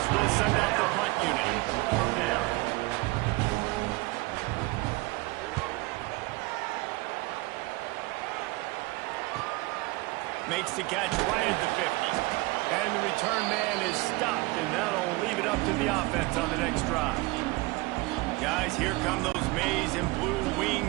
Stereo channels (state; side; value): quieter; left; 22.7 dB